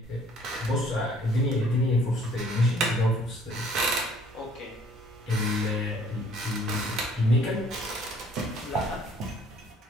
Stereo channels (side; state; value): both; normal; correlation 0.58